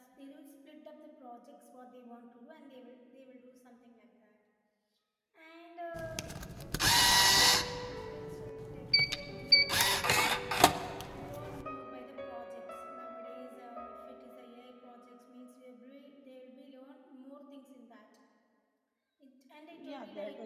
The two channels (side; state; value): both; identical; correlation 1.00